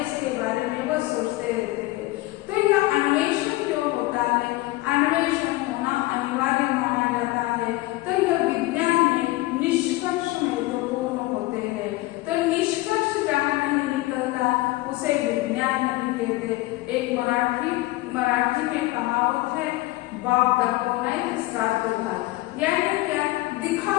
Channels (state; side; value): quieter; right; 19.4 dB